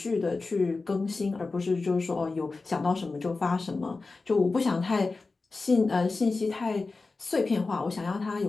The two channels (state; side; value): quieter; right; 3.8 dB